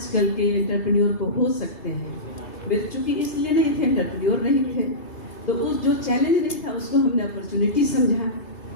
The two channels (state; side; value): late; right; 3.3 ms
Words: के एंटरप्रेन्योर को हो सकते हैं। मेरे चूँकि इसलिए नहीं थे, एंटरप्रेन्योर नहीं थे, तो उस जो चैलेंज नहीं था उसको हमने अपॉर्चुनिटी समझा,